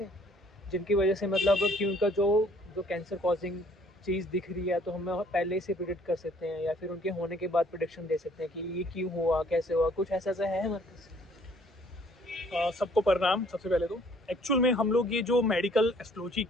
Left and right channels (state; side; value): normal; both; correlation 0.60